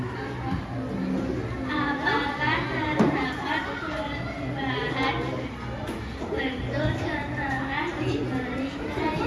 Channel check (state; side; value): identical; both; correlation 1.00